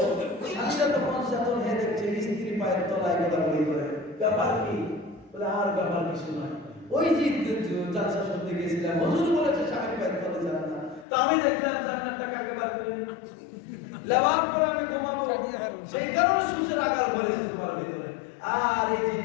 স্বামীরা তখন চেতন হয়ে দেখছে স্ত্রী পায়ের তলায় গোলাগুলি করে, ব্যাপার কি? বলে আর ব্যাপার কিছু নয়, ওই যে জালসা শুনতে গেছিলাম, হুজুর বলেছে স্বামীর পায়ের তলে জান্নাত, তো আমি দেখলাম জান্নাতটাকে আগে বার করে লেওয়ার পরে আমি ঘুমাবো, সেই কারণে সুসের আকার হয়েছে তোমার ভিতরে। আর এই যে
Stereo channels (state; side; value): drops out; right; at 11.1 s